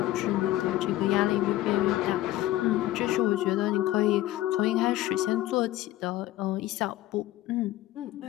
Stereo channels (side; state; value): right; quieter; 15.3 dB